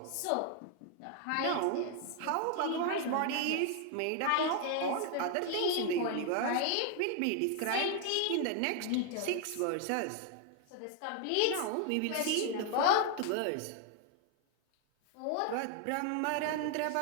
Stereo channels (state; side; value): different; both; correlation 0.00